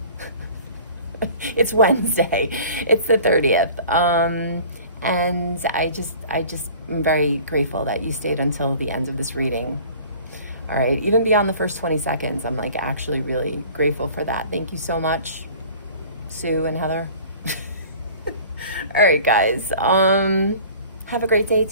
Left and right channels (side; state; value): both; inverted; correlation -0.46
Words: It's Wednesday. It's the 30th. And I just am very grateful that you stayed until the end of this reading. All right, even beyond the first 20 seconds, I'm like actually really grateful for that. Thank you so much, Sue and Heather. All right, guys. Have a great day.